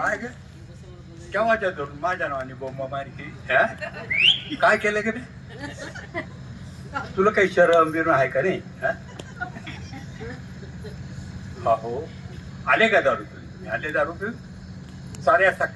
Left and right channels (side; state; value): both; identical; correlation 1.00